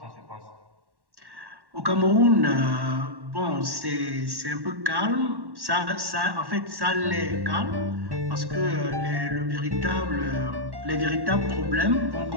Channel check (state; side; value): late; left; 1.1 ms